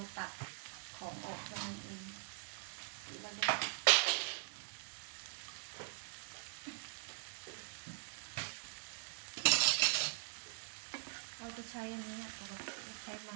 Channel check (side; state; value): left; silent; digital silence